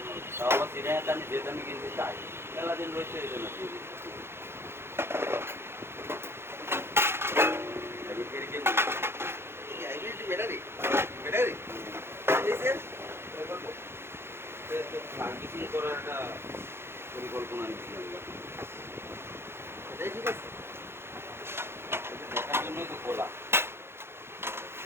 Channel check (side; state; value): left; late; 0.12 ms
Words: তাও আবার সিরিয়াতে আমি যে দামে কিনতে চাই মেলা দিন রয়েছে এই জন্য দিয়ে দিচ্ছি। হাইব্রিড কিনতে হাইব্রিড ব্যাটারি ব্যাটারি এসে বলবো সার্ভিসিং করার একটা পরিকল্পনা নিচ্ছি আমরা। এটাই ঠিক আছে। এটা দেখার জন্যই তো খোলা।